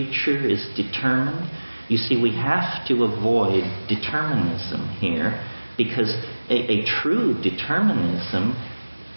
is determined? You see, we have to avoid determinism here, because a true determinism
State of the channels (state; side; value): inverted; both; correlation -1.00